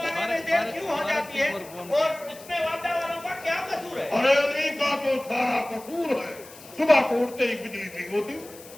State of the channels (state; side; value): noise; left; hiss, 19 dB below the sound